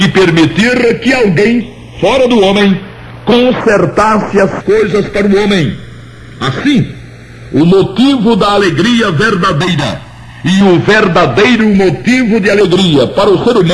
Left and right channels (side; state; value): both; identical; correlation 1.00